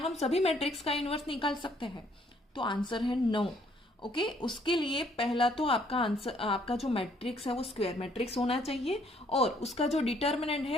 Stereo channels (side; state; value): both; normal; correlation 0.65